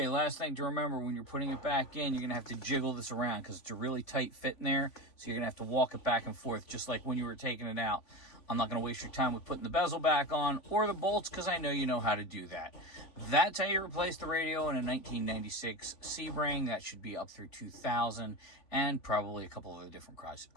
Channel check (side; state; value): right; late; 3.5 ms